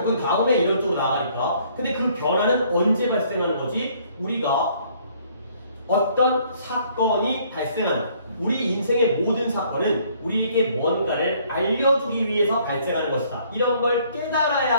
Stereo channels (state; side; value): inverted; both; correlation -0.62